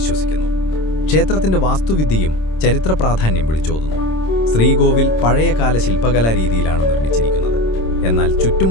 ക്ഷേത്രത്തിന്റെ വാസ്തുവിദ്യയും ചരിത്ര പ്രാധാന്യം വിളിച്ചോതുന്നു. ശ്രീകോവിൽ പഴയകാല ശില്പകലാ രീതിയിലാണ് നിർമ്മിച്ചിരിക്കുന്നത്. എന്നാൽ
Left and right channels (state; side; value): late; right; 26 ms